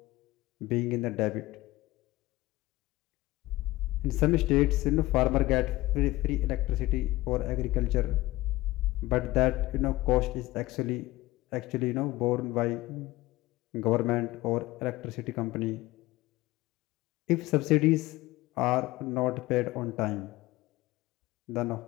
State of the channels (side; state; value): right; quieter; 18.6 dB